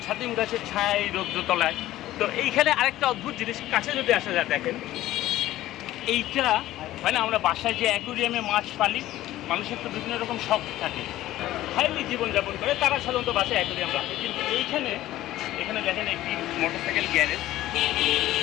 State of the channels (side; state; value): right; quieter; 15.0 dB